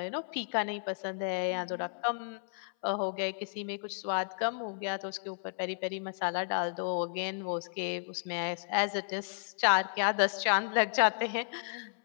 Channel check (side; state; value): right; silent; 56 dB below the other